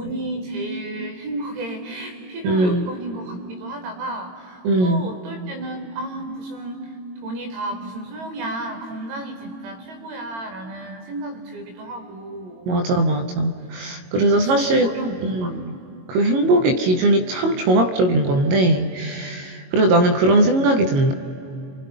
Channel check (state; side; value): late; left; 22 ms